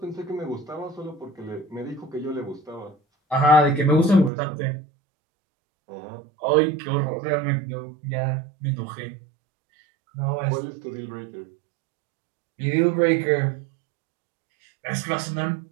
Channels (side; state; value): left; drops out; at 4.3 s